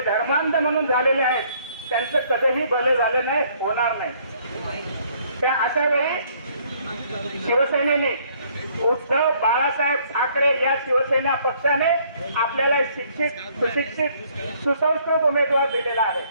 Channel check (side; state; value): both; inverted; correlation -0.63